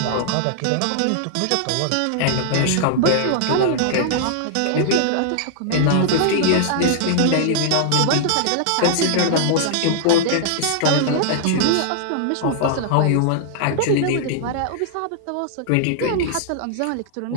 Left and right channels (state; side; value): different; both; correlation -0.01